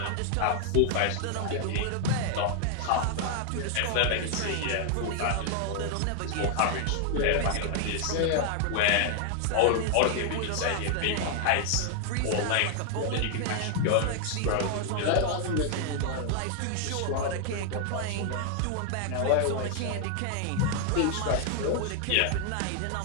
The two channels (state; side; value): different; both; correlation 0.00